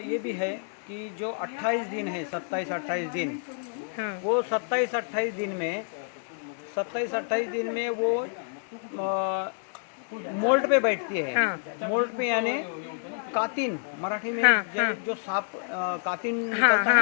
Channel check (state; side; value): silent; right; digital silence